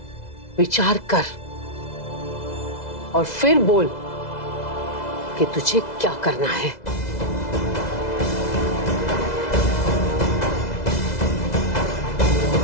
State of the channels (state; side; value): late; right; 2.0 ms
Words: विचार कर और फिर बोल कि तुझे क्या करना है।